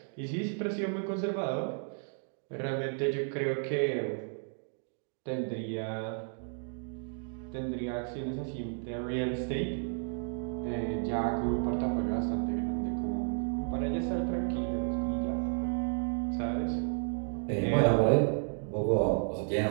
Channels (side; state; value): left; silent; 56 dB below the other